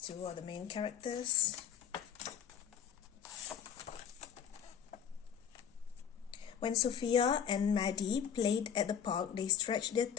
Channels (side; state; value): right; quieter; 8.3 dB